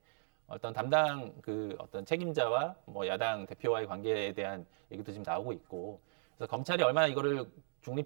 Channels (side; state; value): left; silent; digital silence